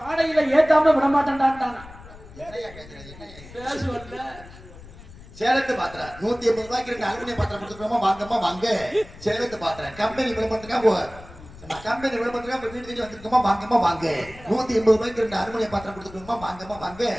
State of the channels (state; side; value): noise; left; rumble, 18 dB below the sound